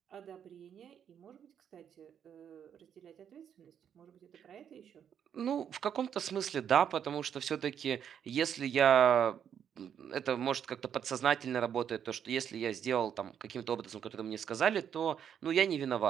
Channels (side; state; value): left; quieter; 8.6 dB